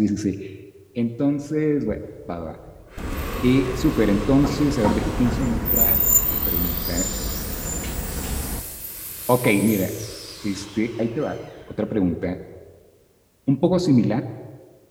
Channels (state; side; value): identical; both; correlation 1.00